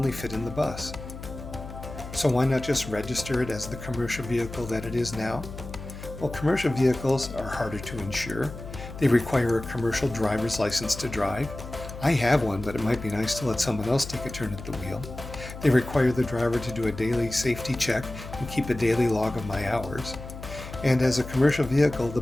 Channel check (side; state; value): left; noise; hum, 11 dB below the sound